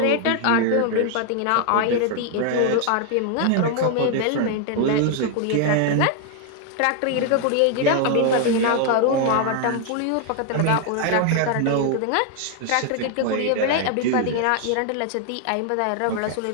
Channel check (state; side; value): different; both; correlation 0.00